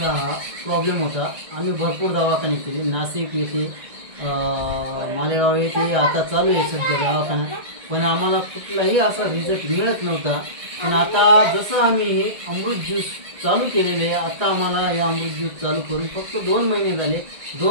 प्रॉब्लेम होता. आम्ही भरपूर दवाखाने केले, नाशिक येथे, मालेगाव येथे, आता चालू आहे सध्या दवाखाना, पण आम्हाला कुठलाही असा रिझल्ट मिळत नव्हता. पण आता जसं आम्ही हे अमृत ज्यूस चालू केलेले आहे, आता आम्हाला हे अमृत ज्यूस चालू करून फक्त 2 महिने झाले.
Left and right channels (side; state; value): left; late; 1.8 ms